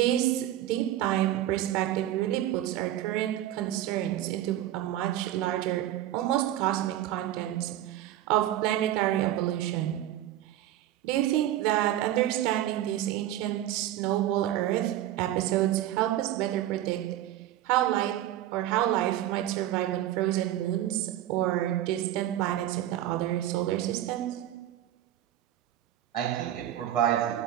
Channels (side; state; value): left; quieter; 12.9 dB